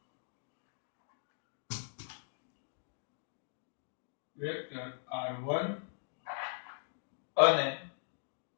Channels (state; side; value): silent; right; digital silence